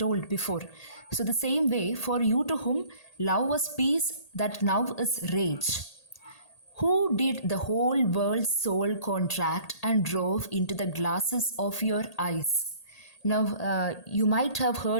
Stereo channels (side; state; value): right; late; 1.8 ms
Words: before. So, the same way, for you to whom love was peace, that now is rage. Who did the whole world's soul contract and drove into the glasses of your eyes? Now, you might have